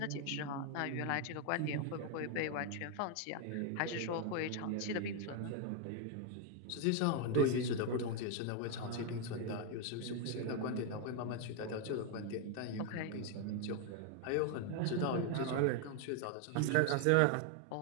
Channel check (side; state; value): both; different; correlation 0.00